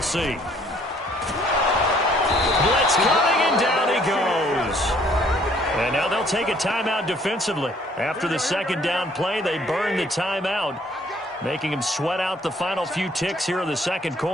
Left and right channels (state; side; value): normal; both; correlation 0.61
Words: see. Blitz coming, and down he goes. And now they'll take a timeout defensively. After the second down play, they burn the timeout, making him sweat out the final few ticks here in the second